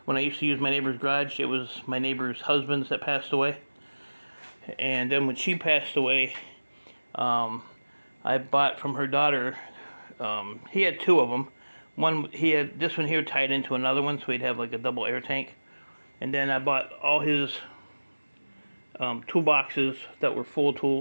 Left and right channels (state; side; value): inverted; both; correlation -1.00